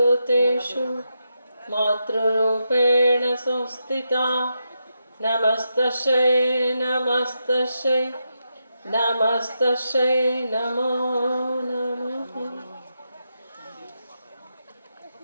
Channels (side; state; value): both; inverted; correlation -0.85